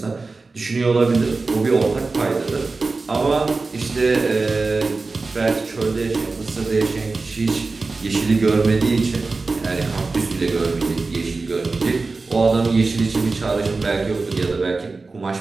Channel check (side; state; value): left; quieter; 3.8 dB